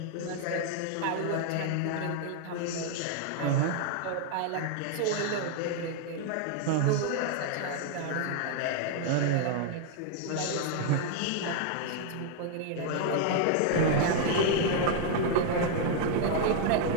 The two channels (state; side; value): different; both; correlation 0.00